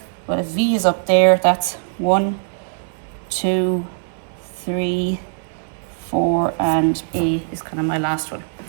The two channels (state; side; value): silent; left; digital silence